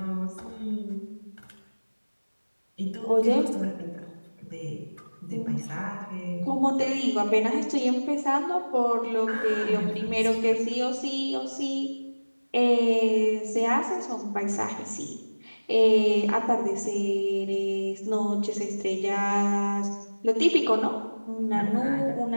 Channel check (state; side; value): inverted; both; correlation -1.00